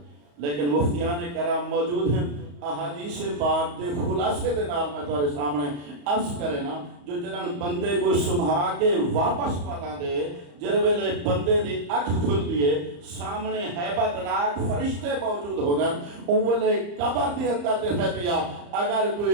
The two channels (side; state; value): left; late; 34 ms